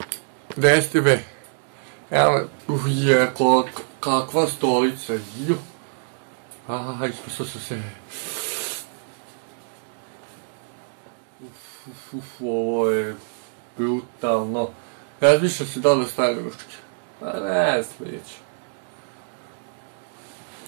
Gdje jeste be? Evo me... Uje, kakva stolica, ju. Aha, ispasao sam se. Ovo je... brutalno. Razmišljam se da li stavim ručke. A ne, slijedeću.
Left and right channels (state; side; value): silent; left; digital silence